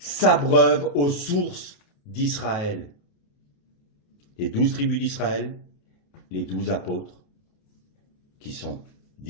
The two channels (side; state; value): right; late; 28 ms